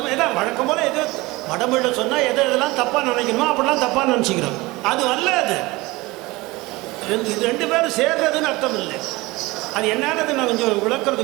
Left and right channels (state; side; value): quieter; left; 21.6 dB